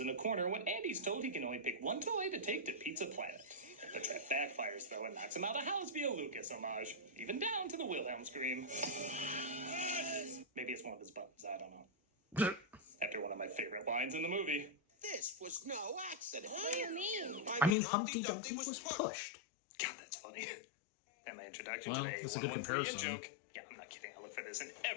in a corner when Andy's told he can only pick one toy to take to Pizza Planet. The trap backfires, though, and knocks him out of house via Lucas homage, even down to the Wilhelm scream. Maybe it's one of his buttons, I don't know. After one of my favorite lines in the movie. This was no accident. What do you mean? I mean, Humpty Dumpty was pushed. God, that's funny. And my introduction Well, today that's a good comparison. Joke. Yeah, I'm not kidding. I look for this in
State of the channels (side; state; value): right; drops out; at 17.8 s